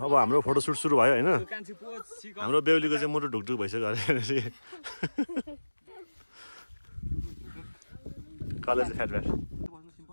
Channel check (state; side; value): inverted; both; correlation -1.00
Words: अब हाम्रो फोटोसुट सुरु भयो हैन हाम्रो बेहुलीको चाहिँ मुटु ढुकढुक भइसक्यो अरे कलेज फ्याट फ्याट